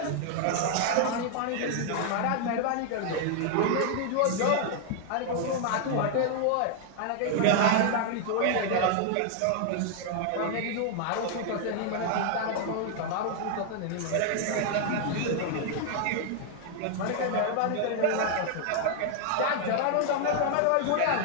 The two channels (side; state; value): both; different; correlation 0.00